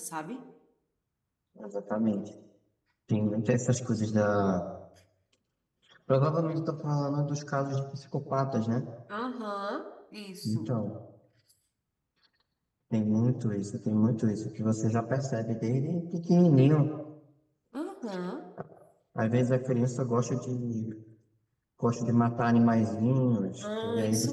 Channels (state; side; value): identical; both; correlation 1.00